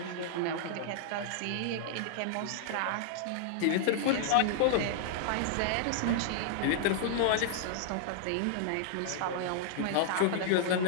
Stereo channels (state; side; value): different; both; correlation -0.01